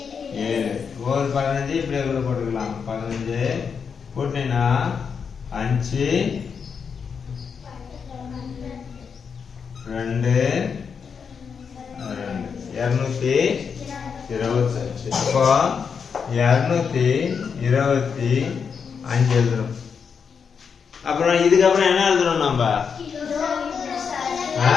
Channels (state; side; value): quieter; right; 6.3 dB